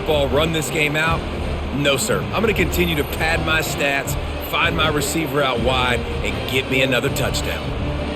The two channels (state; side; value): identical; both; correlation 1.00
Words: run this game out. No, sir. I'm going to continue to pad my stats, find my receiver out wide, and get me another touchdown.